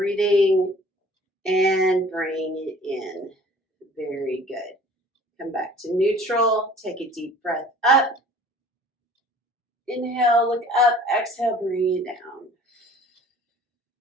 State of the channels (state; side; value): normal; both; correlation 0.50